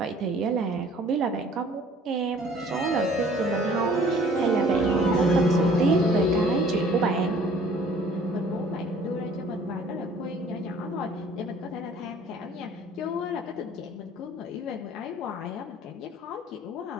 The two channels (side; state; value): both; normal; correlation 0.53